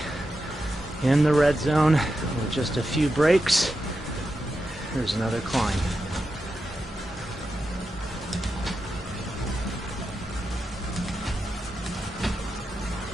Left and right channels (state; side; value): normal; both; correlation 0.89